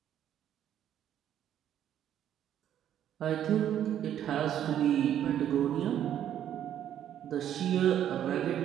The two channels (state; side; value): quieter; left; 10.5 dB